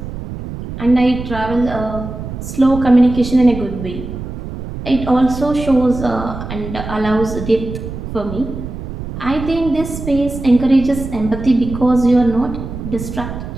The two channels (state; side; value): noise; right; rumble, 8 dB below the sound